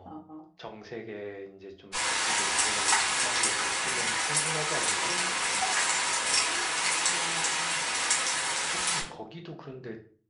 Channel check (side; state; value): both; identical; correlation 1.00